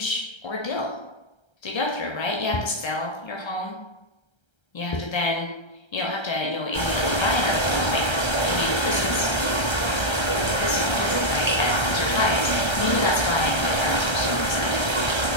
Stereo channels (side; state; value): right; late; 1.3 ms